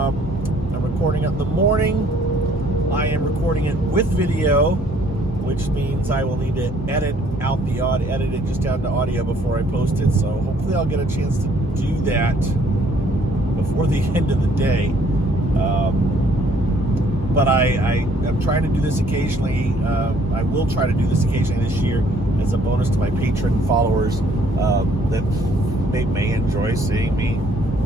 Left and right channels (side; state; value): both; normal; correlation 0.62